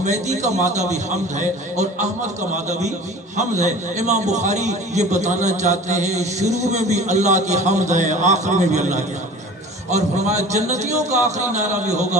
کا مادہ بھی حمد ہے اور احمد کا مادہ بھی حمد ہے. امام بخاری یہ بتانا چاہتے ہیں شروع میں بھی اللہ کی حمد ہے, آخر میں بھی اللہ کی حمد ہے. اور فرمایا جنتیوں کا آخری نعرہ بھی ہوگا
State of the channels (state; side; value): normal; both; correlation 0.41